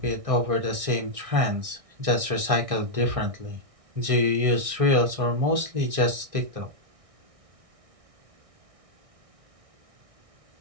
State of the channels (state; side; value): late; left; 1.6 ms